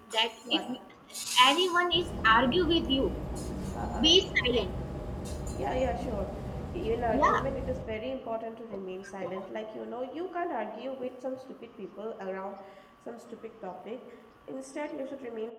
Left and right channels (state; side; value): identical; both; correlation 1.00